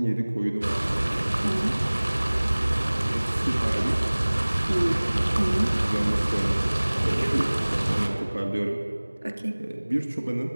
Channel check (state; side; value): inverted; both; correlation -1.00